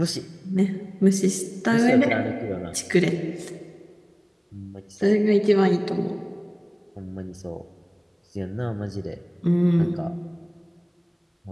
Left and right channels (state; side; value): identical; both; correlation 1.00